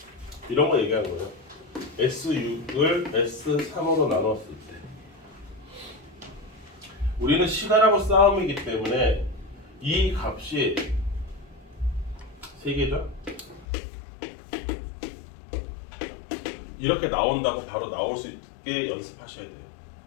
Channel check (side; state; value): right; drops out; at 13.7 s